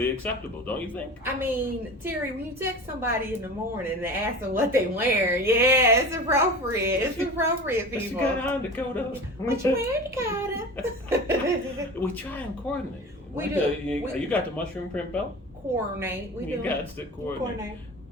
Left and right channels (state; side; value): normal; both; correlation 0.35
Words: acceptable, don't you think? I mean, Terry, when you text somebody in the morning and ask them what they wear, yeah, it's appropriate. It's appropriate, What you people. got on, Dakota? What you wearing, Dakota? We try and coordinate. We Like, do. you got the mushroom print belt? Coordinate. We You do. got to coordinate.